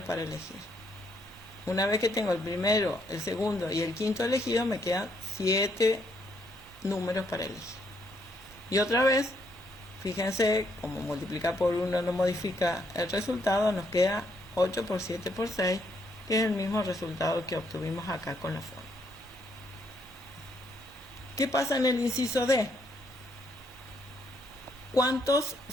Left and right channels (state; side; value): normal; both; correlation 0.73